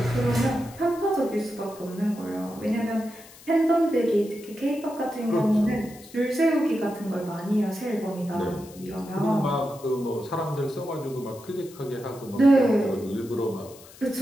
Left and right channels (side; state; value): left; noise; hiss, 21 dB below the sound